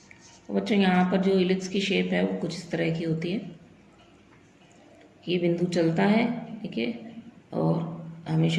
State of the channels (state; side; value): identical; both; correlation 1.00